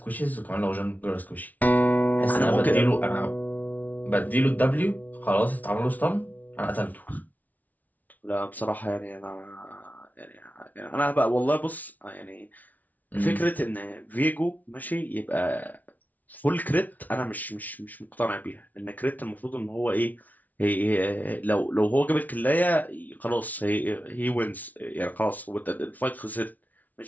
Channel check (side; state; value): right; late; 0.076 ms